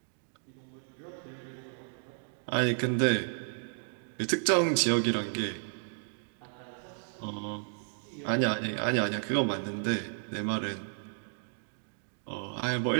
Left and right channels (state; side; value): silent; left; digital silence